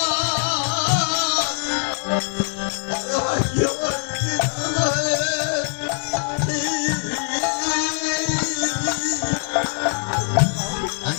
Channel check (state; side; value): silent; right; digital silence